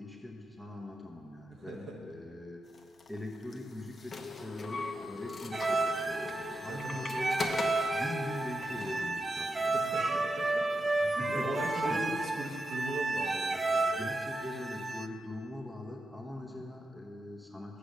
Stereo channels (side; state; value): both; normal; correlation 0.88